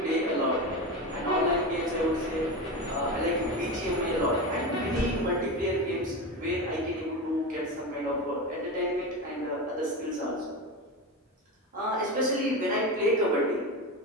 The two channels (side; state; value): both; normal; correlation 0.21